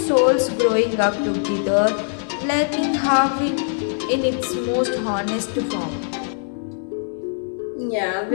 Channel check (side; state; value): right; silent; 64 dB below the other